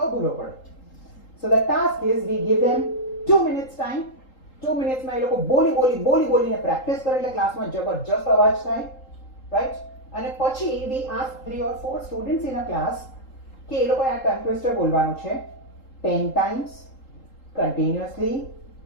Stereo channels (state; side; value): late; right; 3.8 ms